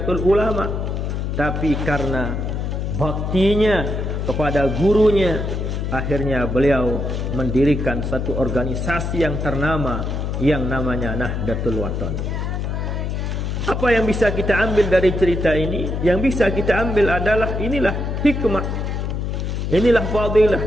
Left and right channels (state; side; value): noise; left; hum, 2 dB below the sound